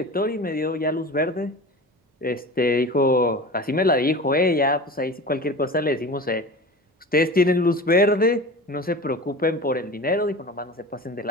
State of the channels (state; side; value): normal; both; correlation 0.33